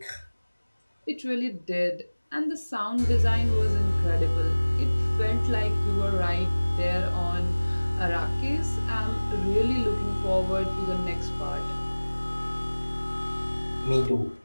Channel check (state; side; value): inverted; both; correlation -1.00